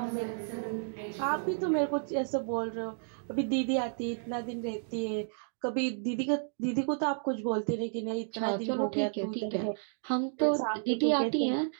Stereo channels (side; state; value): left; silent; digital silence